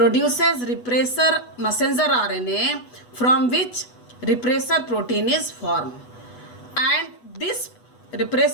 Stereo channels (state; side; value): late; right; 8.2 ms